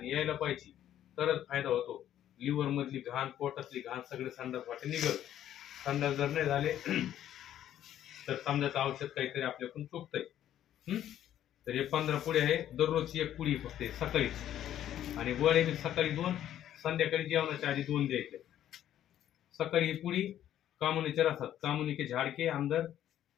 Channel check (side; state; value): right; quieter; 11.4 dB